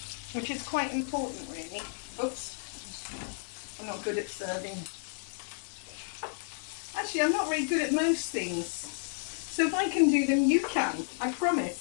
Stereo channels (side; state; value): right; silent; digital silence